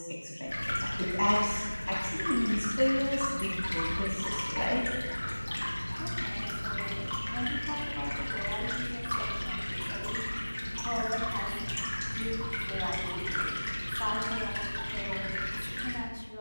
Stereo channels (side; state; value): both; inverted; correlation -1.00